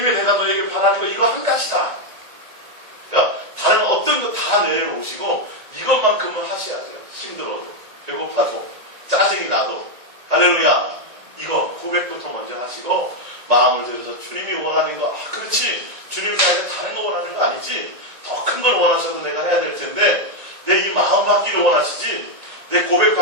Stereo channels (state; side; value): late; left; 1.9 ms